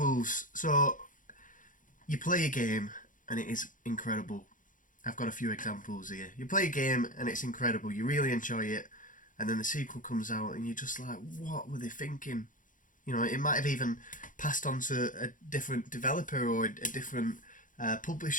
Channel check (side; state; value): right; late; 0.38 ms